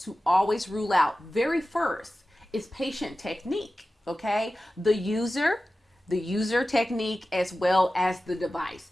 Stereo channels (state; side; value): normal; both; correlation 0.95